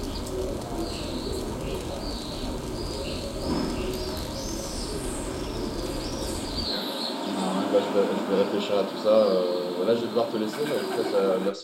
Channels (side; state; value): both; identical; correlation 1.00